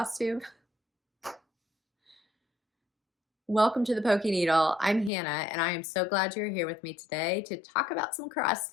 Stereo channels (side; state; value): right; drops out; at 5.1 s